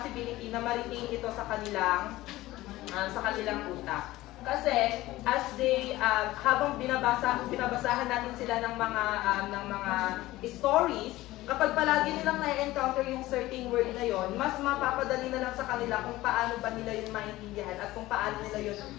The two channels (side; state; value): right; quieter; 17.4 dB